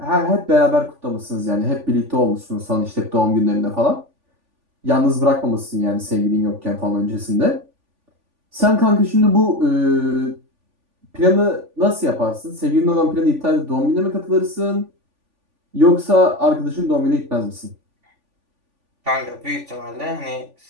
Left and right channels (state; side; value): late; left; 3.5 ms